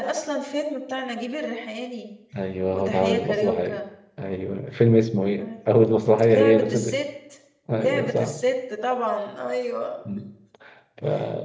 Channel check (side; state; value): both; identical; correlation 1.00